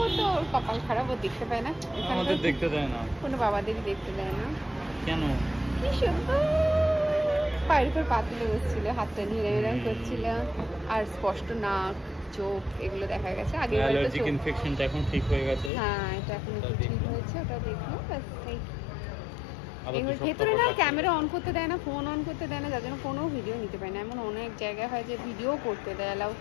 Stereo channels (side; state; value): right; drops out; at 15.7 s